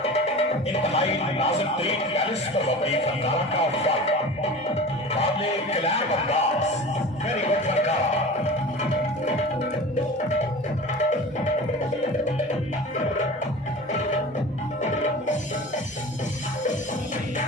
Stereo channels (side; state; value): both; normal; correlation 0.36